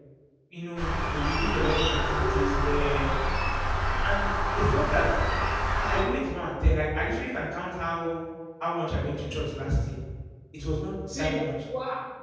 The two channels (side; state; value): both; identical; correlation 1.00